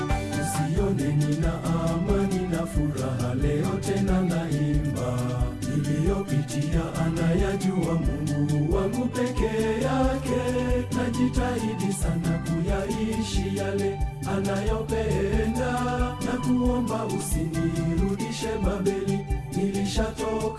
usione nina amani na furaha leo tena naimba, niliyopitia anayajua Mungu wangu pekee yake, najitahidi sana kuyaishi yale anayopenda, na kuomba usinirudishe Babeli,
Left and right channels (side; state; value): both; identical; correlation 1.00